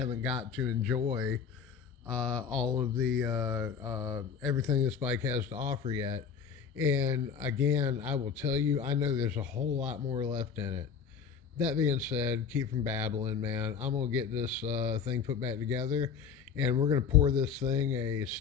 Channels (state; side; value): quieter; right; 6.7 dB